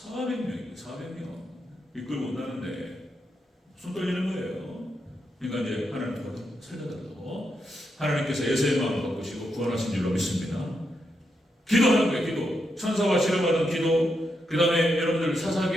이끌고 온다는데 손 떨리는 거예요. 그러니까 이제 하나님 살려달라고 하나님께서 에서의 마음을 바꾸시고 구원하신 줄로 믿습니다. 기도하는 거예요. 기도. 천사와 씨름하던 기도. 그 다음에 여러분들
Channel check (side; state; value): both; normal; correlation 0.83